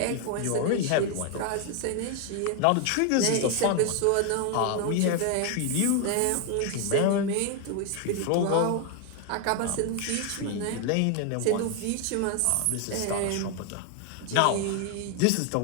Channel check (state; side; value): different; both; correlation 0.01